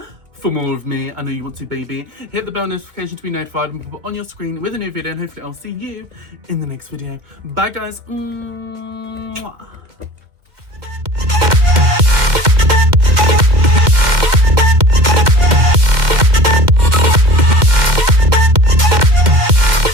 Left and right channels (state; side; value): late; left; 2.1 ms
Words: for more of me. I know you want to, baby. Hit the bell notification to be notified and pop it on your screen with a new video, and hopefully I'll see you in the next video. Bye, guys. Mwah.